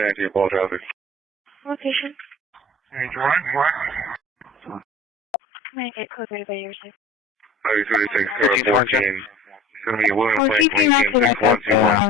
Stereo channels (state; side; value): normal; both; correlation 0.43